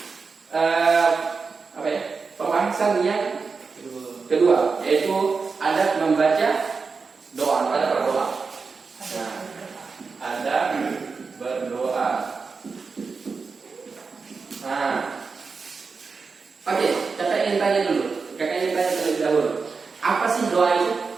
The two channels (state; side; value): quieter; left; 4.8 dB